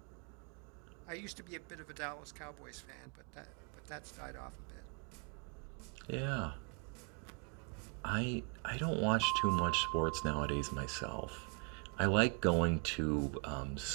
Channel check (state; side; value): quieter; left; 37.5 dB